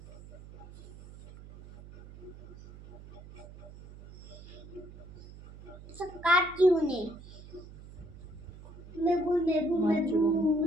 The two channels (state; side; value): noise; right; hum, 17 dB below the sound